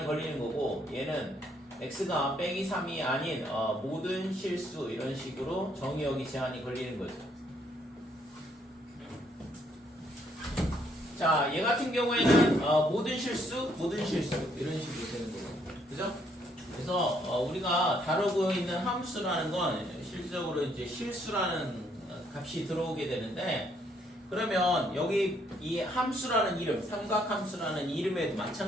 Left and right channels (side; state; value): both; normal; correlation 0.70